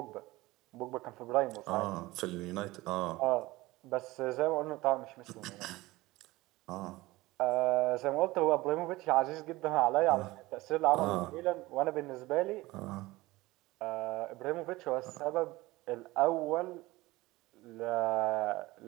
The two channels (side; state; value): left; quieter; 19.7 dB